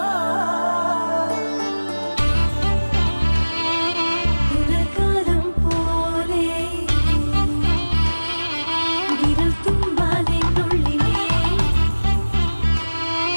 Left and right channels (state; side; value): inverted; both; correlation -1.00